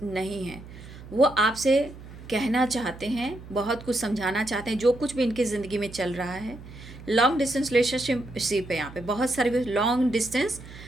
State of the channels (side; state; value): right; noise; hum, 16 dB below the sound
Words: नहीं हैं। वो आपसे कहना चाहते हैं, बहुत कुछ समझाना चाहते हैं, जो कुछ भी इनकी ज़िंदगी में चल रहा है। लॉन्ग डिस्टेंस रिलेशनशिप है, यहाँ पे बहुत सारे लॉन्ग डिस्टेंस